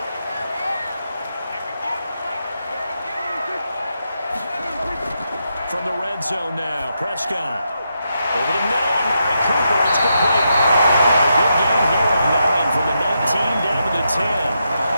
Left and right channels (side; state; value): both; inverted; correlation -0.83